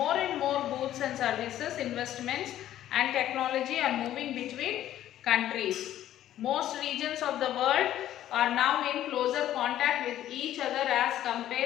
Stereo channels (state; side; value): quieter; right; 12.4 dB